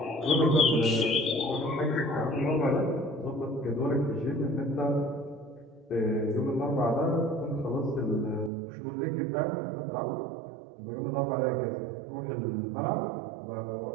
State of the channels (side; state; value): left; drops out; at 8.5 s